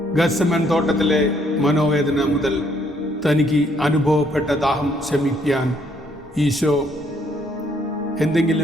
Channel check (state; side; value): normal; both; correlation 0.68